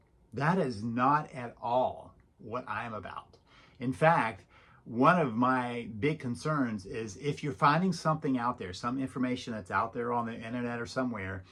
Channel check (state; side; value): identical; both; correlation 1.00